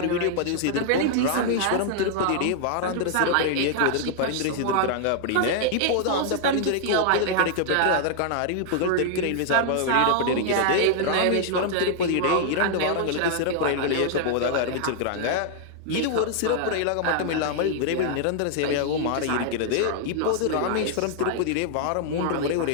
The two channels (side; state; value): both; different; correlation -0.01